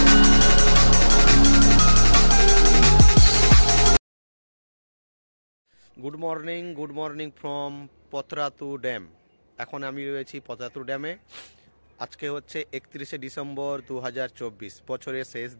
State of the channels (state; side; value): inverted; both; correlation -1.00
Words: Good morning from Patratu dam. এখন আমি রয়েছি পতরাতু ড্যামে। আজকে হচ্ছে 31শে ডিসেম্বর 2024, বছরের শেষ